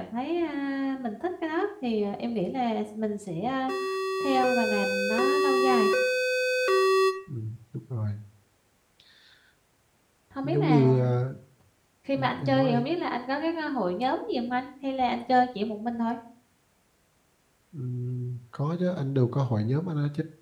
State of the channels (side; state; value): both; identical; correlation 1.00